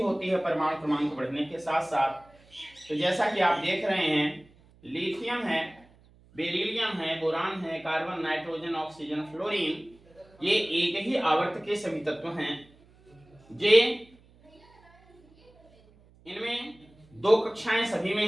होती है परमाणु क्रमांक बढ़ने के साथ साथ। तो जैसा कि आप देख रहे हैं लिथियम है, बेरिलियम है, बोरान है, कार्बन, नाइट्रोजन, ऑक्सीजन, फ्लोरीन, ये एक ही आवर्त के सभी तत्व हैं। जे इनमें दो कक्षाएं सभी में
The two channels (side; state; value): right; noise; hum, 28 dB below the sound